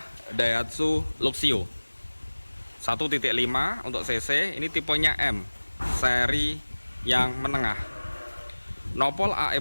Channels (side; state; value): both; inverted; correlation -1.00